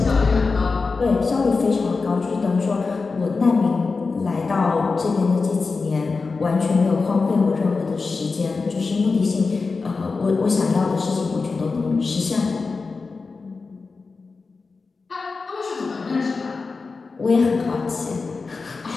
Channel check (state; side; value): quieter; right; 4.3 dB